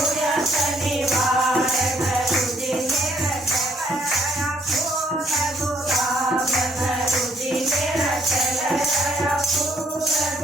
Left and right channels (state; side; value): normal; both; correlation 0.66